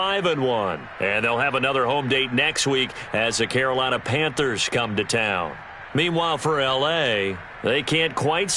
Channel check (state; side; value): identical; both; correlation 1.00